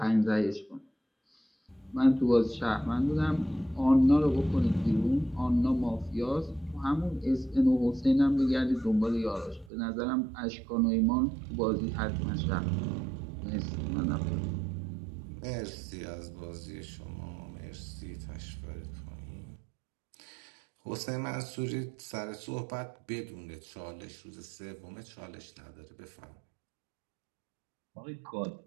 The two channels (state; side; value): drops out; left; at 9.7 s